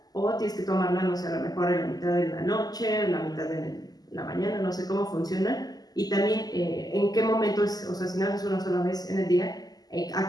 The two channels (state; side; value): late; right; 0.19 ms